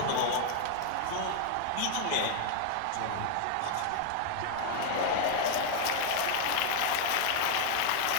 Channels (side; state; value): both; different; correlation 0.00